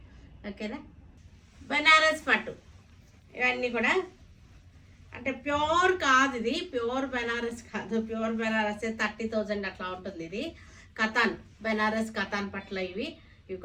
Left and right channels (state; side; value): identical; both; correlation 1.00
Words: ఓకేనా? బెనారస్ పట్టు ఇవన్నీ కూడా అంటే ప్యూర్ కాదు, ఇది ప్యూర్ బెనారస్ కాదు. ప్యూర్ బెనారస్ 30,000 అట్లా ఉంటుంది. ఇది కథాన్, బెనారస్ కథాన్ పట్ల ఇవి